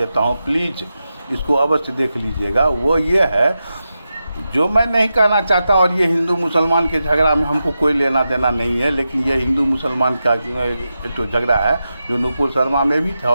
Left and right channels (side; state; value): both; inverted; correlation -0.90